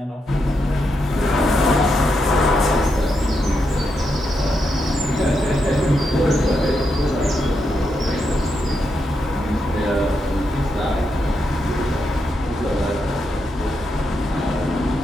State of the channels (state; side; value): normal; both; correlation 0.83